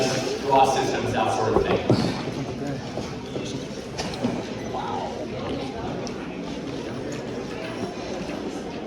draw systems, that sort of thing.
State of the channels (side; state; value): both; identical; correlation 1.00